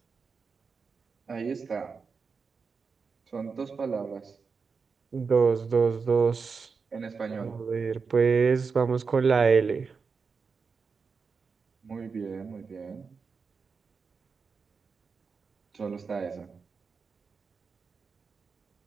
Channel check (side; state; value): left; quieter; 5.2 dB